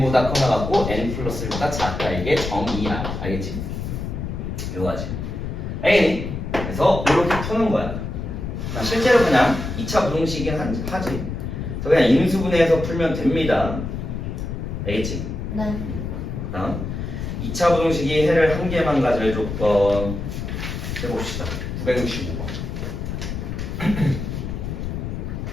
커나 같고 n 플러스 1보다 작다. 이게 정의야. 알겠지? 이거지. 알겠니? 그래서 이렇게 푸는 거야. 실제로 그냥 2차 부등식이긴 하지. 그래서 그냥 인수분해해서 풀면 됩니다. 알겠지? 네. 다음 2차 부등식이 해를 한 개만 가질 조건 해봅시다. 965번.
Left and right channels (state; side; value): noise; left; rumble, 5 dB below the sound